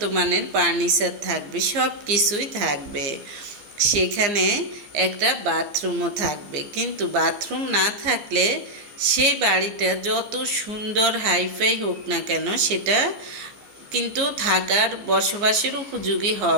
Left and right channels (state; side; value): late; left; 15 ms